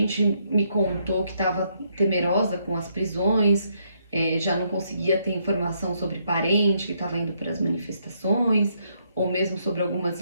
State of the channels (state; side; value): inverted; both; correlation -0.74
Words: me contou que estava temerosa com as prisões, já não conseguia ter informação sobre parente que estava indo para as manifestações, ou mesmo sobre algumas